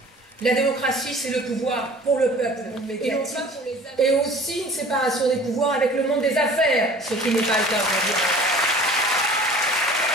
La démocratie, c'est le pouvoir pour le peuple, et non pas pour les affaires. Et aussi une séparation des pouvoirs avec le monde des affaires, ce qui n'est pas le cas aujourd'hui.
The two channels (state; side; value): normal; both; correlation 0.46